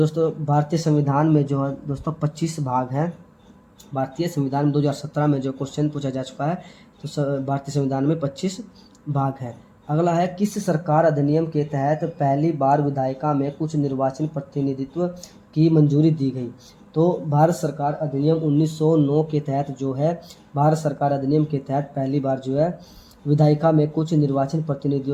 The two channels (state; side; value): identical; both; correlation 1.00